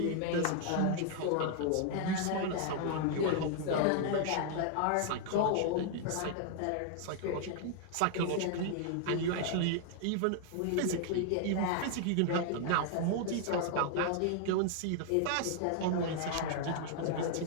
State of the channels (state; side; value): different; both; correlation 0.00